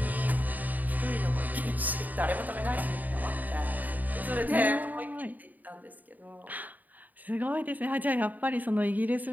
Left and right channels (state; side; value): late; left; 0.082 ms